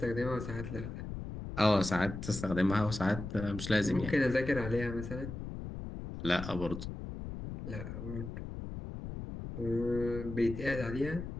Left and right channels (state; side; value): noise; left; rumble, 8 dB below the sound